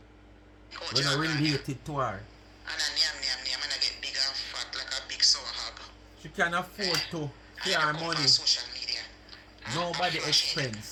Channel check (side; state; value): both; identical; correlation 1.00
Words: you related to her. And I get big and fat like a big sour hog. She can afford to pay her money. Social media. Nobody